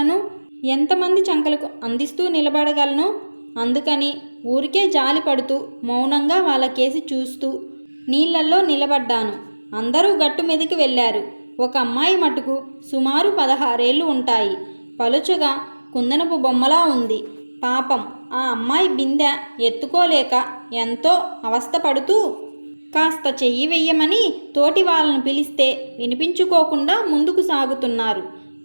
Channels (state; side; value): inverted; both; correlation -1.00